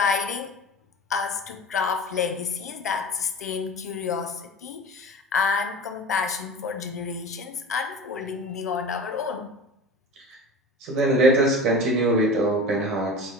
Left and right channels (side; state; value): both; normal; correlation 0.35